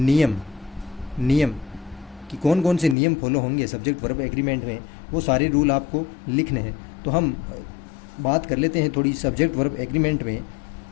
कि कौन कौन से नियम फॉलो होंगे सब्जेक्ट वर्ब एग्रीमेंट में, वो सारे रूल आपको लिखने हैं। तो हम बात कर लेते हैं थोड़ी सब्जेक्ट वर्ब एग्रीमेंट में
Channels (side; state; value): right; drops out; at 3.0 s